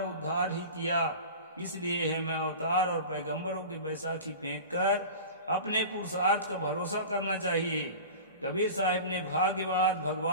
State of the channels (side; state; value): both; inverted; correlation -0.34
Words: उद्धार ही किया। इसलिए है मैं अवतार और पैगंबरों की बैसाखी फेंक कर अपने पुरुषार्थ का भरोसा करना चाहिए। कबीर साहिब ने भाग्यवाद,